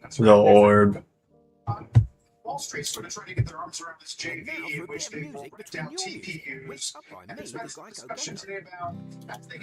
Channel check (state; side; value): identical; both; correlation 1.00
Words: the orb. Wall Street's sort of trying to get their arms around this JV in which they will break down TPUs. And there's been some discussion today about as they